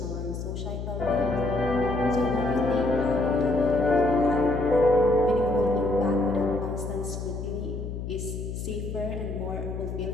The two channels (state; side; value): noise; left; hum, 6 dB below the sound